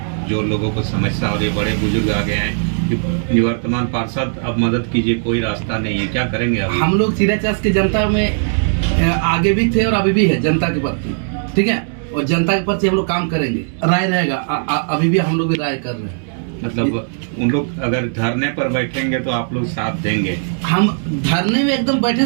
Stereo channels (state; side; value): silent; left; 67 dB below the other